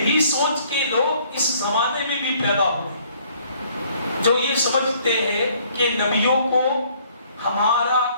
سوچ کے لوگ اس زمانے میں بھی پیدا ہوئے جو یہ سمجھتے ہیں کہ نبیوں کو ہمارا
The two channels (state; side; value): inverted; both; correlation -0.61